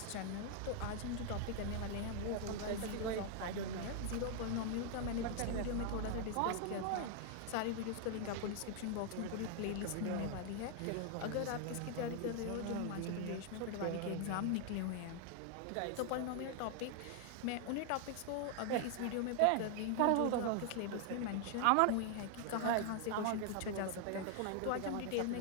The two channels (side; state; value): both; different; correlation 0.00